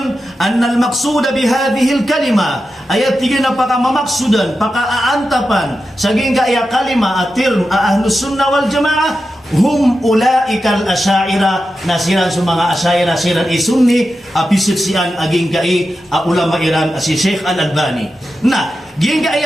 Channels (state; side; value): normal; both; correlation 0.90